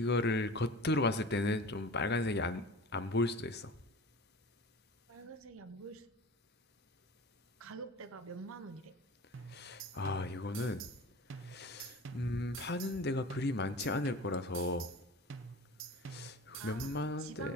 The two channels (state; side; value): normal; both; correlation 0.37